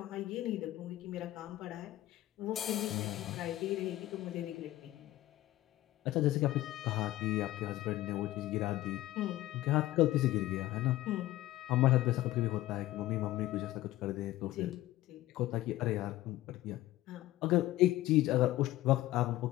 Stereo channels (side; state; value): right; quieter; 15.9 dB